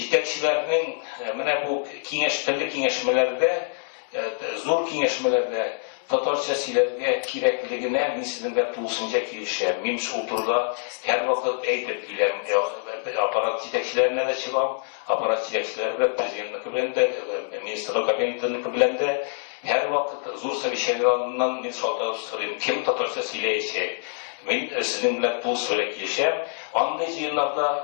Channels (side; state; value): right; silent; digital silence